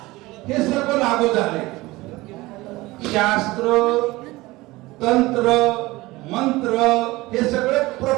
हे सर्व लागू झाले. शास्त्र, तंत्र, मंत्र हे सगळे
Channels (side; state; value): left; quieter; 20.2 dB